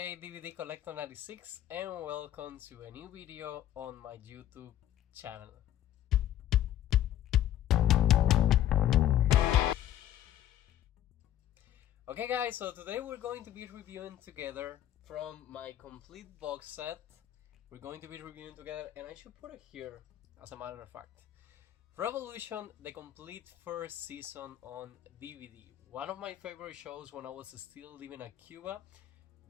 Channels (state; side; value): quieter; right; 12.0 dB